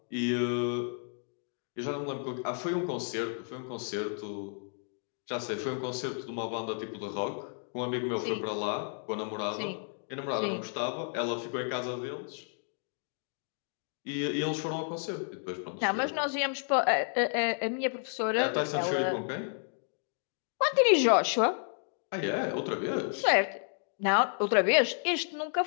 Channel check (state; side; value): silent; right; 57 dB below the other